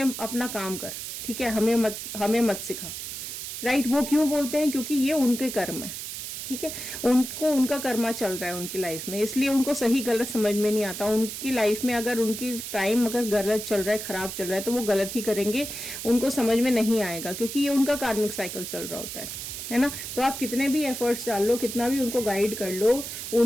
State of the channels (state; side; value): noise; right; hiss, 7 dB below the sound